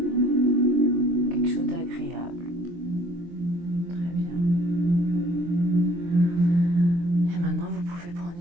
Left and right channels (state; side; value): late; left; 23 ms